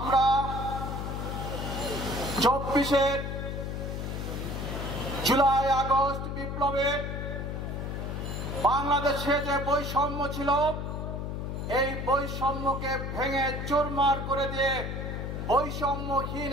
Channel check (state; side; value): noise; left; hum, 4 dB below the sound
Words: 24 জুলাই আগস্ট বিপ্লবে বাংলাদেশে যে বৈষম্য ছিল, এই বৈষম্যকে ভেঙে চুরমার করে দিয়ে বৈষম্যহীন